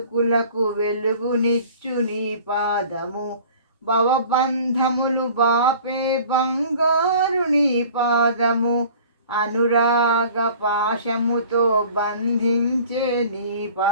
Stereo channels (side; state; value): both; inverted; correlation -0.47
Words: వెలుగునిచ్చు నీ పాదము. భవబంధములు బాపే బంగారు నీ పాదము, అనురాగ పాశముతో బంధించే నీ